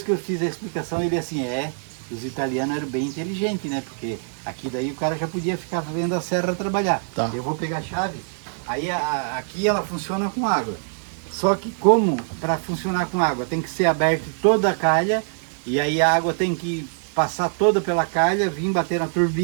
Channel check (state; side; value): silent; left; digital silence